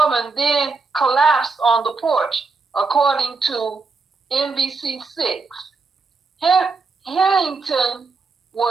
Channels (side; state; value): left; quieter; 4.3 dB